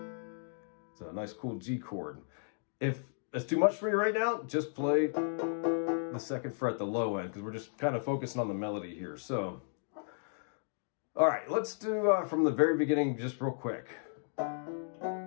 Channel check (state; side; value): silent; right; digital silence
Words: it's a nice cool G chord. If that's too much for you right now, just play the 2nd fret, the low end, because we're just kind of focusing on the melody here. So, all right, let's do from the very beginning just real quick.